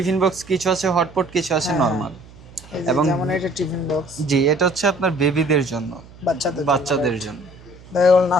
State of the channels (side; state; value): right; noise; hum, 21 dB below the sound